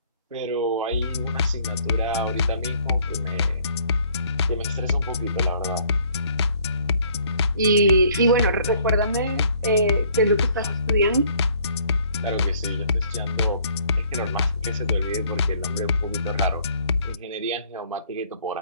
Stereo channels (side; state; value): both; inverted; correlation -0.60